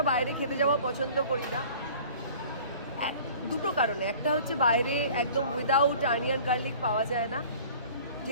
বাইরে খেতে যাওয়া পছন্দ করি না, দুটো কারণে। একটা হচ্ছে বাইরে একদম উইদাউট অনিয়ন গার্লিক পাওয়া যায় না,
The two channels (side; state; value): both; inverted; correlation -0.47